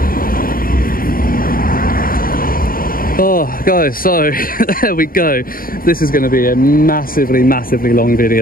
Oh guys, so there we go. This is going to be a massively long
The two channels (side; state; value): right; late; 0.42 ms